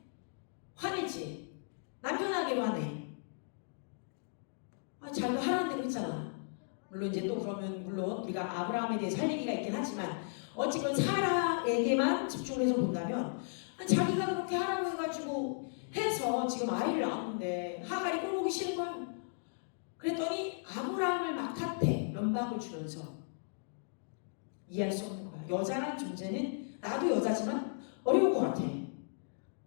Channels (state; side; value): silent; right; digital silence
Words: 화내지. 남편에게로 화내. 자기가 하라는 대로 했잖아. 물론 이제 또 그러면 물론 우리가 아브라함에 대해서 할 얘기가 있긴 하지만 어쨌건 사라에게만 집중해서 본다면 자기가 그렇게 하라고 해가지고 해서 지금 아이를 낳았는데 하갈이 꼴보기 싫은 거야. 그랬더니 아브라함을 막 탓해. 면박을 주면서. 이해할 수 없는 거야. 여자란 존재는 나도 여자지만 어려운 것 같아.